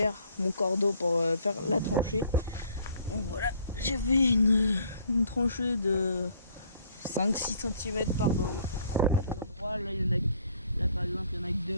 mon cordeau pour faire la tranchée. Donc voilà, j'avais une tranchée de 5-6 cm par bande à des endroits. Là, là par exemple il y en a que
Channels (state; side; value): inverted; both; correlation -0.60